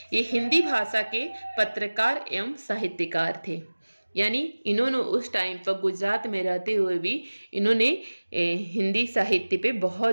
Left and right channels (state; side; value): inverted; both; correlation -1.00